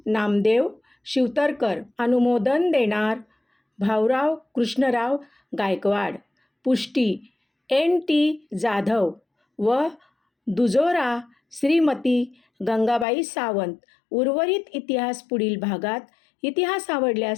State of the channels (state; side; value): drops out; right; at 13.1 s